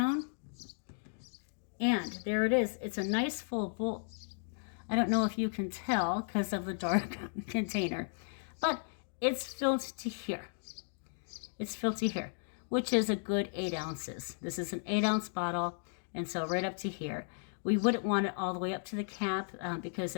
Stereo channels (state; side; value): silent; right; digital silence